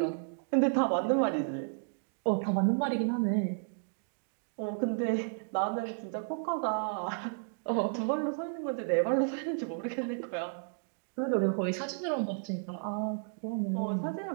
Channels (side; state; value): left; silent; digital silence